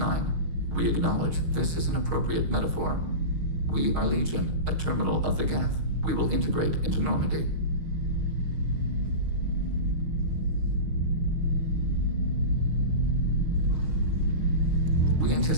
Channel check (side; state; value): left; late; 6.5 ms